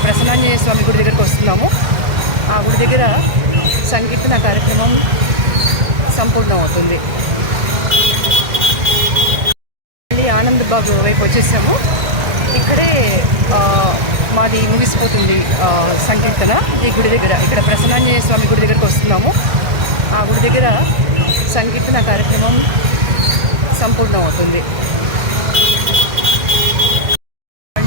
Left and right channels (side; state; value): left; late; 1.6 ms